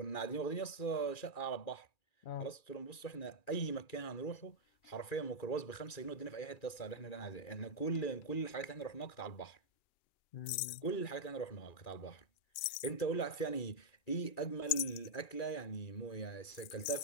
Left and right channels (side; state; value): right; late; 2.4 ms